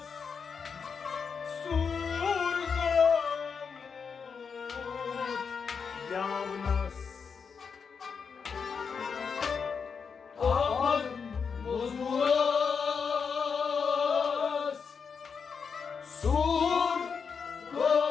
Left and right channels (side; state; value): right; quieter; 6.0 dB